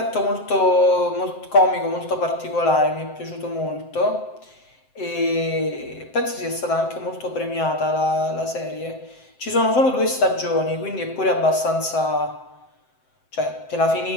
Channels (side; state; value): right; late; 7.7 ms